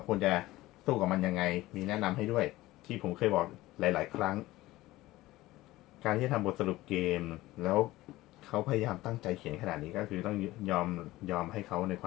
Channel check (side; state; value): right; quieter; 17.7 dB